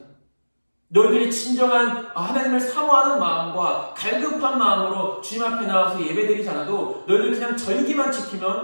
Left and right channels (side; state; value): both; inverted; correlation -1.00